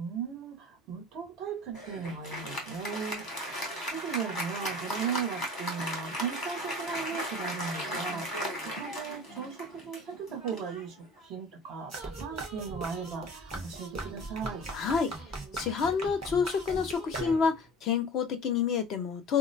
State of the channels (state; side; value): normal; both; correlation 0.40